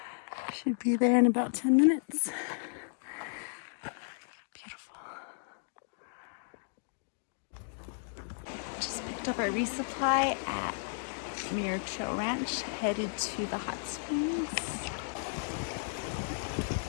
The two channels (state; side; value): silent; right; digital silence